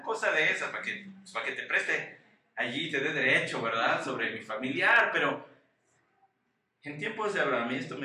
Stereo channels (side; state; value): both; identical; correlation 1.00